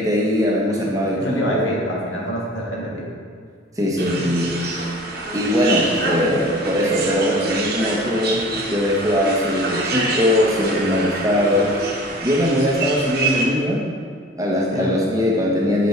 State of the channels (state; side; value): normal; both; correlation 0.44